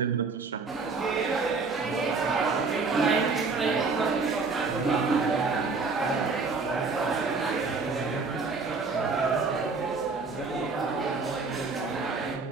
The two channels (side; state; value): left; quieter; 4.3 dB